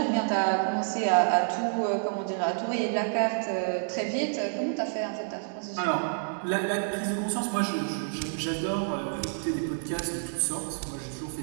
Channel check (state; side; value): silent; left; digital silence